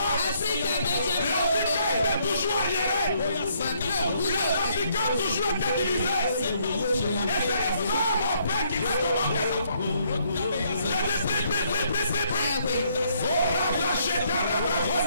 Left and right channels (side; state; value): both; inverted; correlation -0.69